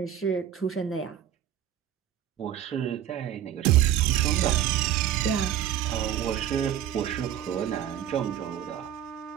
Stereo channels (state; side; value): quieter; left; 10.8 dB